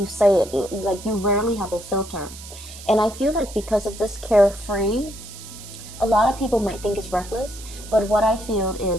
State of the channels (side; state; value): right; noise; hiss, 15 dB below the sound